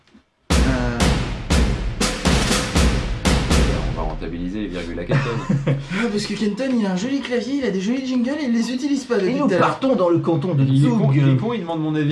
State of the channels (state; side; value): identical; both; correlation 1.00